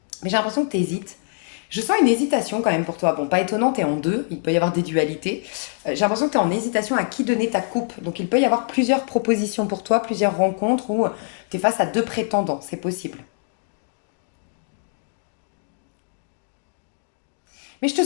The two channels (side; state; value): right; silent; 59 dB below the other